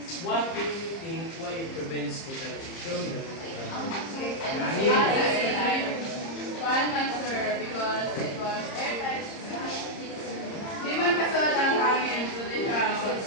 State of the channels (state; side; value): late; right; 30 ms